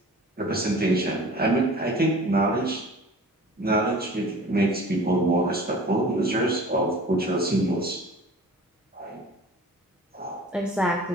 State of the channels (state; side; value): normal; both; correlation 0.43